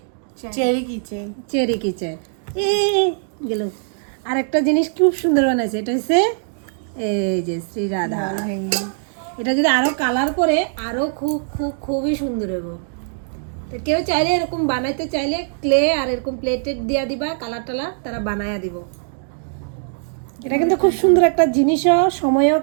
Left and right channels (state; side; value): silent; left; digital silence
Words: চেরি কিচেন। চেরি কিচেন এ গেল। আর একটা জিনিস খুব সুন্দর বানাইছে, এটা হচ্ছে এই যে শ্রী রাধা। এটা যদি আরো কালার করে আরো খুব খুব খুবই সুন্দর হবে। তো কেউ চাইলে এরকম বানাইতে চাইলে ক্লে আর এরকম প্লেটেড দিয়া দিবা, কালার টালার তারা বানায়া দিব। এটা কিন্তু খুব সুন্দর একটা জিনিসও, সময়ও